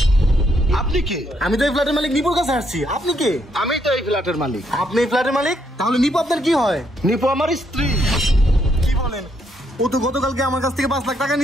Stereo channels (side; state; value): both; normal; correlation 0.74